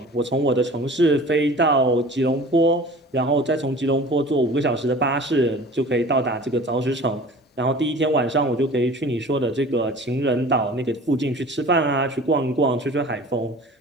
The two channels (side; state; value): both; normal; correlation 0.42